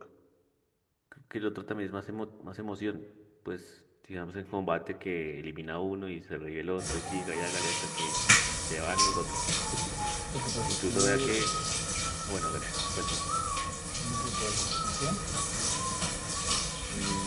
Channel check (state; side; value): identical; both; correlation 1.00